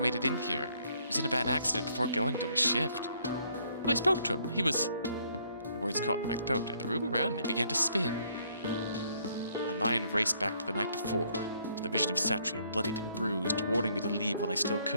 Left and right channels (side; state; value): both; inverted; correlation -0.67